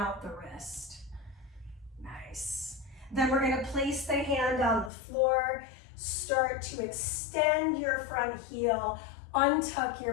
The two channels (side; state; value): right; drops out; at 4.9 s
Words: the wrist. Nice. Then we're gonna place the hand on the floor, start to extend your front heel, untuck your